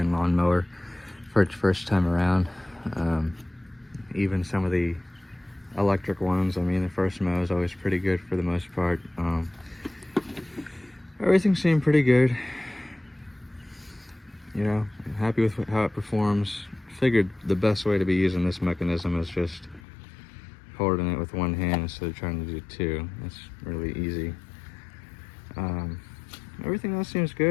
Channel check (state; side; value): drops out; right; at 19.8 s